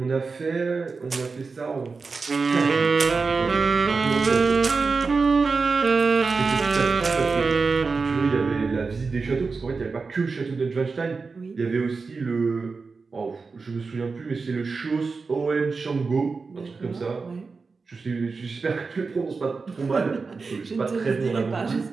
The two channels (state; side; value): quieter; left; 4.5 dB